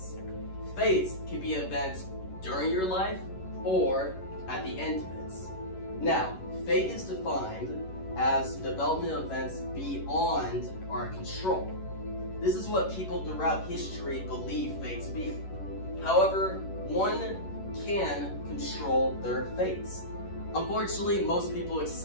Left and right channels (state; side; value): late; right; 11 ms